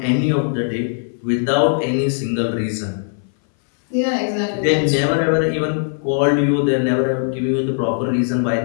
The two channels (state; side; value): silent; right; 60 dB below the other